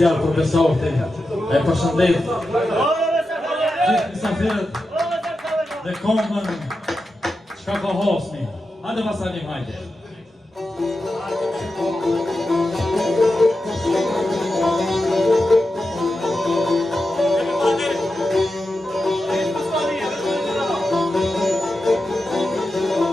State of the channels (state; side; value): normal; both; correlation 0.90